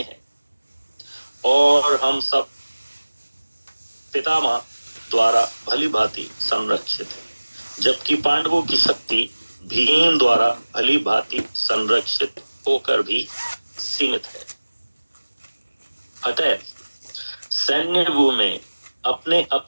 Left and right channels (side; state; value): both; inverted; correlation -1.00